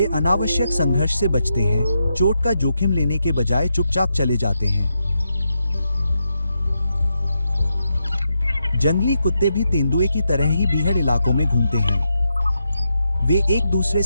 अनावश्यक संघर्ष से बचते हैं, चोट का जोखिम लेने के बजाय चुपचाप चले जाते हैं। जंगली कुत्ते भी तेंदुए की तरह ही बीहड़ इलाकों में घूमते हैं। वे एक दूसरे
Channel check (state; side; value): inverted; both; correlation -0.84